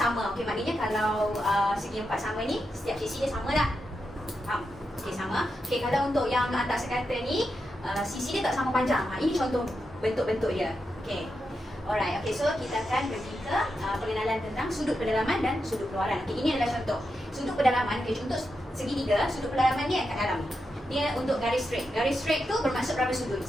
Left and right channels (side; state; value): both; normal; correlation 0.87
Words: Okey, maknanya kalau segi empat sama ni, setiap sisi dia sama tak? Faham? Okey, sama. Okey, kalau untuk yang antar sekata ni, sisi dia tak sama panjang. Ini contoh bentuk-bentuk dia. Okey. Alright. Okey, so kita akan pergi ke pengenalan tentang sudut pendalaman dan sudut keluaran. Okey, ini adalah contoh. Sudut pendalaman, okey, untuk segitiga, sudut pendalaman dia kat dalam. Dia untuk garis straight. Garis straight tu bermaksud berapa sudut?